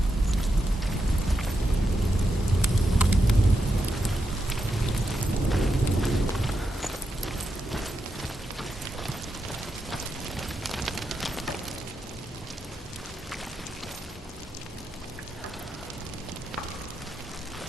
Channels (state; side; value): normal; both; correlation 0.86